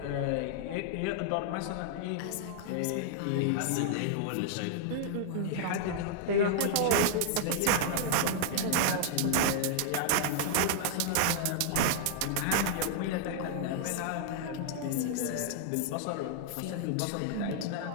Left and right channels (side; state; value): both; different; correlation -0.01